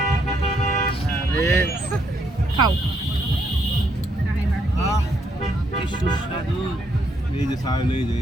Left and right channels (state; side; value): normal; both; correlation 0.74